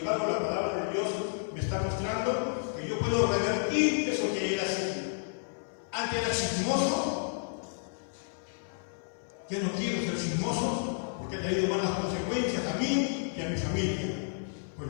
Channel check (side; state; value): right; silent; 57 dB below the other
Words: la palabra de Dios me está mostrando que yo puedo revertir eso que era así. Antes era chismoso, ya no quiero ser chismoso porque ha traído malas consecuencias a mí y a mi familia. Pues